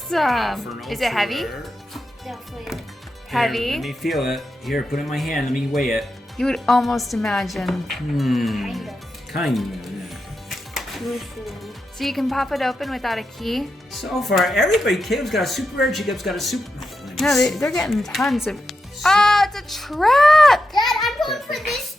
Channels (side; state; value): both; normal; correlation 0.88